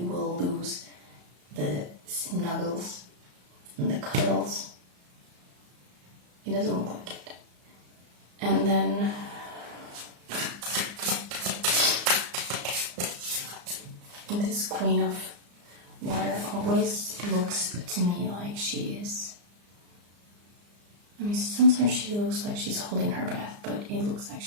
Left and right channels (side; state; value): left; late; 34 ms